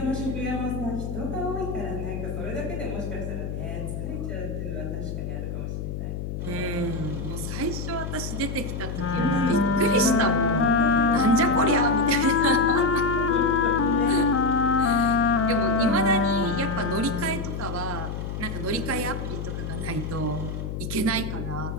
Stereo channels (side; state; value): left; noise; hum, 5 dB below the sound